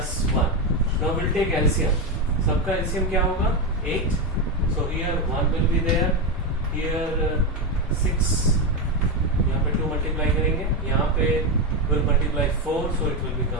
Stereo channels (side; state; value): both; normal; correlation 0.10